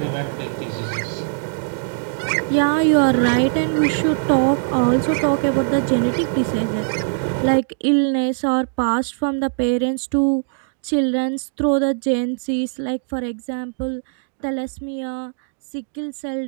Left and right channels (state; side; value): silent; left; digital silence